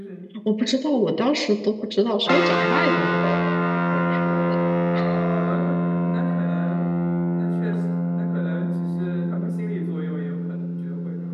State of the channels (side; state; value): both; identical; correlation 1.00